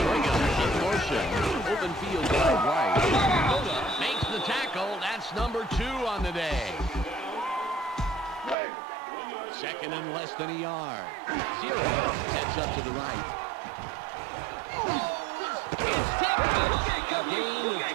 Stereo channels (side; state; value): left; drops out; at 8.6 s